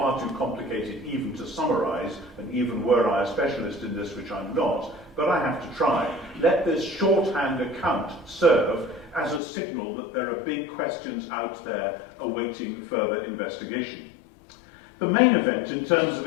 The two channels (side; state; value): right; drops out; at 9.4 s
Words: too complicated even to summarize, and even were I a specialist in this, which I'm not, but I have to try. Let this shorthand account serve as a signal that there are big questions out there awaiting further investigation. The main event in terms of